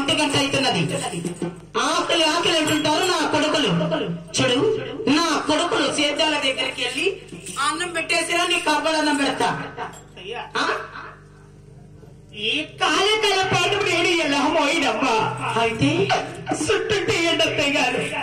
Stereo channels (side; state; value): both; identical; correlation 1.00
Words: గంట అవుతున్నది. ఆకలి అంటుంటారు నా కొడుకులు. చూడు, నా కొడుకులు సేద్యాల దగ్గరికి వెళ్ళి అన్నం పెట్టేసినా నీ కబ్బలన్నం పెడతా. ఈ కాలకాల పాటు నేను ఎలా పోయినమ్మా. అయితే సుట్టుంటే ఏంటత్తయ్య గారు?